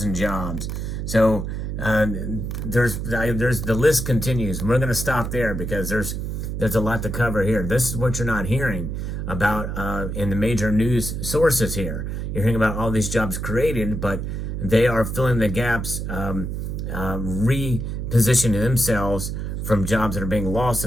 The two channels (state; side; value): noise; right; hum, 4 dB below the sound